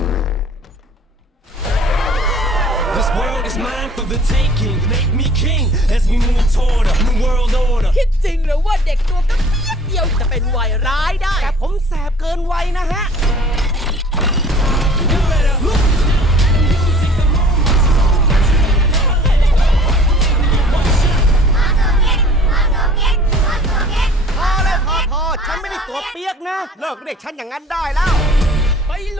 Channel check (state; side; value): normal; both; correlation 0.51